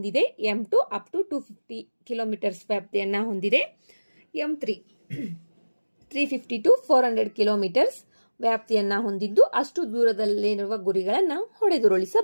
M2 ಅಪ್ ಟು 250 ಕಿಲೋಮೀಟರ್ಸ್ ವ್ಯಾಪ್ತಿಯನ್ನು ಹೊಂದಿದೆ. M3 350 to 400 ಕಿಲೋಮೀಟರ್ಸ್ ವ್ಯಾಪ್ತಿಯನ್ನು ಹೊಂದಿದ್ದು ಅಷ್ಟು ದೂರದಲ್ಲಿರುವ ಗುರಿಗಳನ್ನು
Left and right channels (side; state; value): both; inverted; correlation -1.00